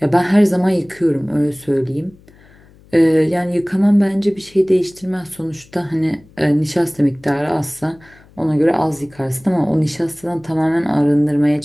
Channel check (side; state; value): left; noise; hum, 27 dB below the sound